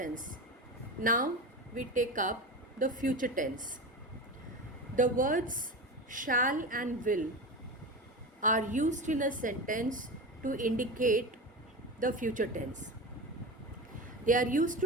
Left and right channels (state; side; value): normal; both; correlation 0.25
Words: Now we take up the future tense. The words shall and will are used in a sentence to indicate the future tense. They are used